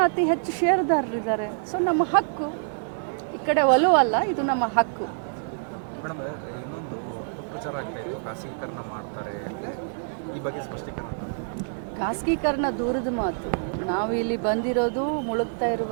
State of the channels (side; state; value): left; silent; digital silence